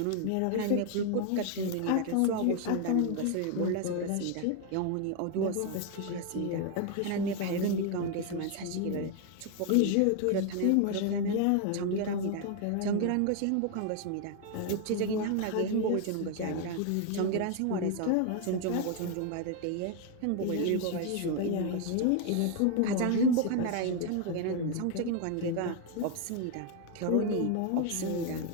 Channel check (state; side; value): different; both; correlation 0.01